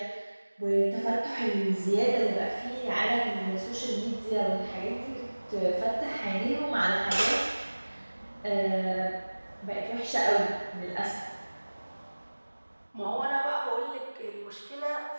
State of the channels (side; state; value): both; inverted; correlation -1.00